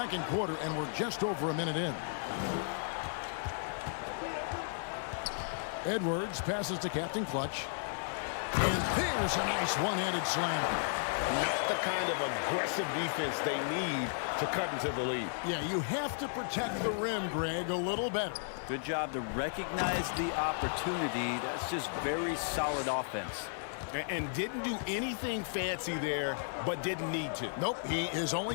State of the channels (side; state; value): right; silent; digital silence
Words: quarter, and we're just over a minute in. Edwards passes to Captain Clutch. And there's a nice one-handed slam. Not the kind of aggressive defense they need to cut into the lead. Yeah, you have to protect the rim, Greg, a little better. Good job to recognize the opportunity. That's just very solid offense. And didn't do anything fancy there, but didn't need to. Nope, his only